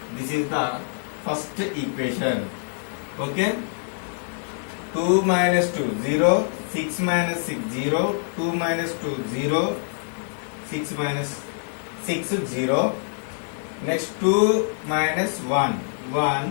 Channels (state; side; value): silent; right; digital silence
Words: This is the first equation. Okay. 2 minus 2, 0. 6 minus 6, 0. 2 minus 2, 0. 6 minus 6, 0. Next 2 minus 1,